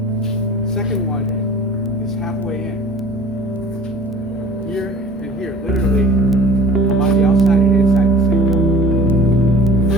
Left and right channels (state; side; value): normal; both; correlation 0.45